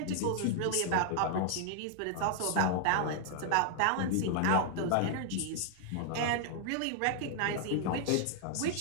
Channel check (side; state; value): both; different; correlation -0.01